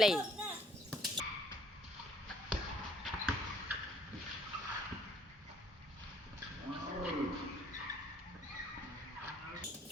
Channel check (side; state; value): both; normal; correlation 0.62